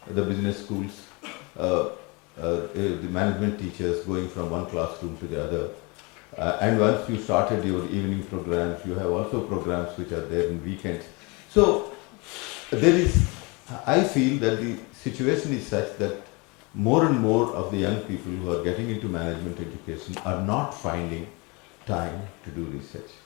the business schools, the management teachers going from one classroom to the other. And once you started your evening programs, you have also programs which are there in weekends. So there is, I feel that the situation is such that more and more of the young people who are getting into management education are not finding time to do research.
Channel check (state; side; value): quieter; right; 28.2 dB